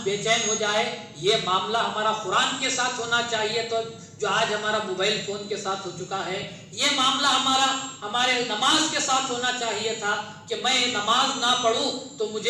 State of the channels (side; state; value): both; identical; correlation 1.00